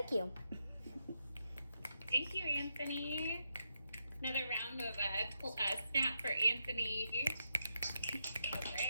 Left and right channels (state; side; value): inverted; both; correlation -0.82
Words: you. Thank you, Anthony. Another round of snap for Anthony. All